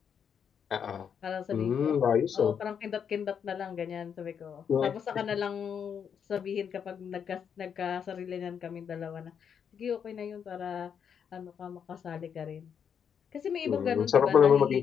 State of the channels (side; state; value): right; quieter; 7.5 dB